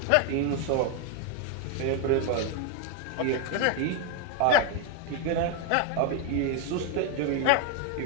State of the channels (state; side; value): different; both; correlation 0.01